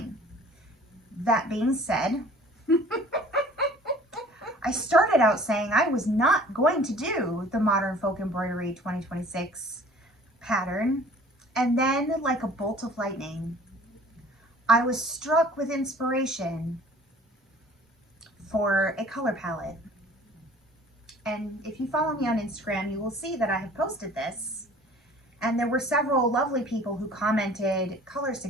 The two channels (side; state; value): both; normal; correlation 0.49